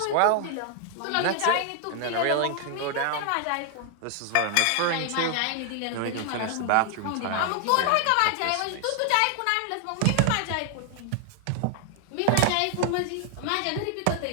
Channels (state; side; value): different; both; correlation 0.00